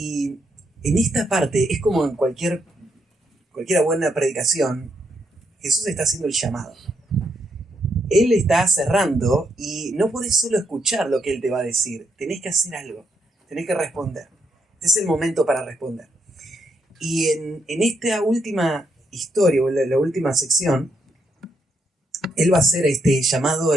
en esta parte es como en cualquier buena predicación, Jesús está haciendo el llamado. Él está cerrando y no podés solo escuchar lo que Él te va a decir, tenés que hacer algo, tenés que responder. Este es el momento para responder. Y en esta última historia, o la última sección, Él va a hacer este llamado,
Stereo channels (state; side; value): normal; both; correlation 0.78